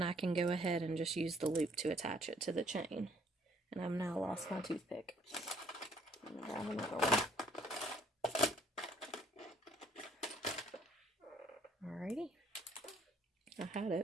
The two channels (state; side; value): normal; both; correlation 0.62